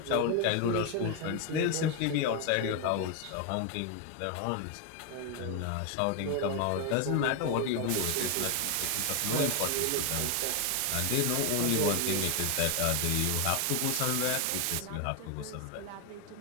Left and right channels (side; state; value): both; different; correlation 0.01